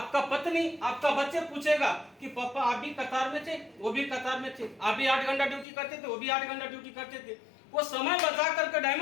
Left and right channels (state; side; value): drops out; right; at 5.7 s